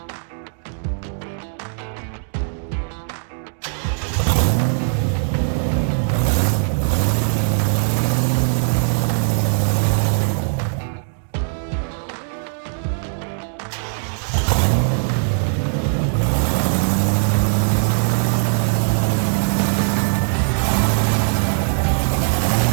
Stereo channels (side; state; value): left; silent; 60 dB below the other